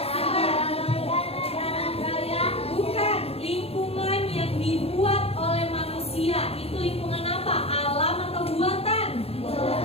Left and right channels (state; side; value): late; right; 0.29 ms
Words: Bukan, lingkungan yang dibuat oleh manusia. Itu lingkungan apa? Alam atau buatan?